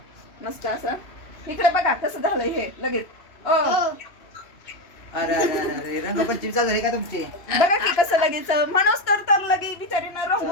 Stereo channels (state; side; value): late; right; 2.9 ms